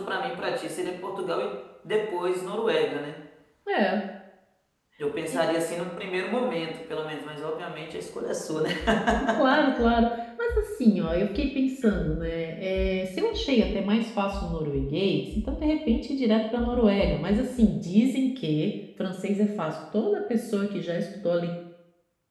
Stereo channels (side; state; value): both; identical; correlation 1.00